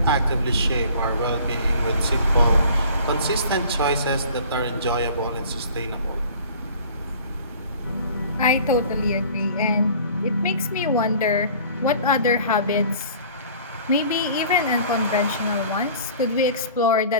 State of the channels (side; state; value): both; inverted; correlation -0.48